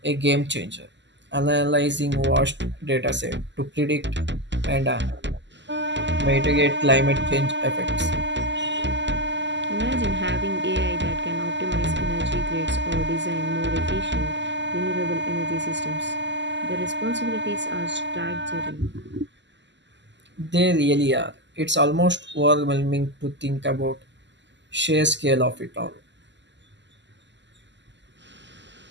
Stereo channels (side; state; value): left; late; 0.53 ms